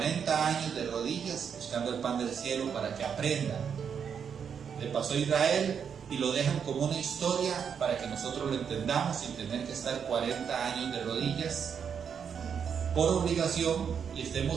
años de rodillas buscando el pan del cielo para que aprendan. Le pasó a Israel y lo dejan como una historia para que nosotros lo entendamos sin tener que estar 40 años de rodillas por obligación y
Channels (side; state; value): left; quieter; 7.2 dB